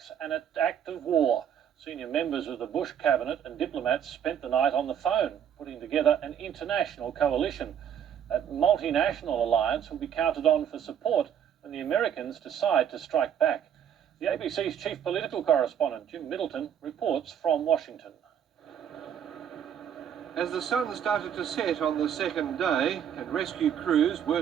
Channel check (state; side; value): quieter; left; 9.0 dB